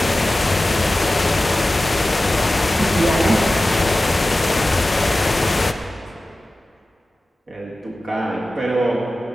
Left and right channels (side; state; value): both; normal; correlation 0.95